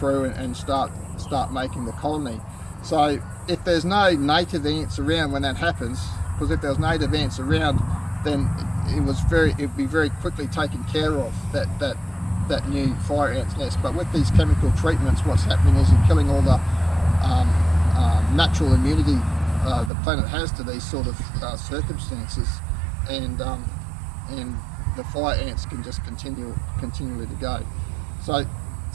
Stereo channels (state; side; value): drops out; left; at 19.9 s